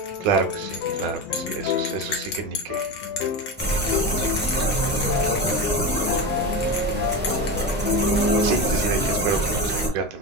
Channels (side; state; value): both; normal; correlation 0.21